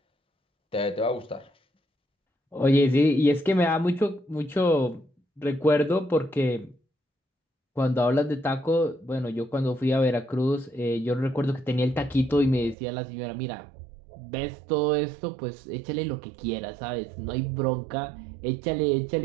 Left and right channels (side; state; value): left; drops out; at 12.8 s